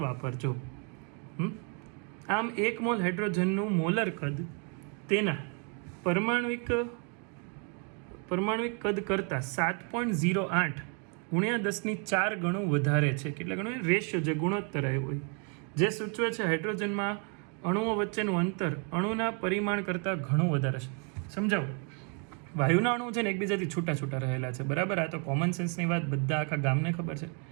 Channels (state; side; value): quieter; left; 38.3 dB